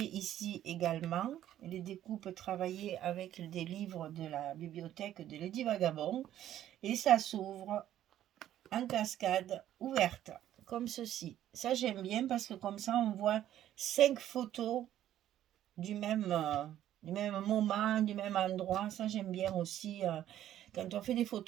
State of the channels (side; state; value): left; quieter; 12.0 dB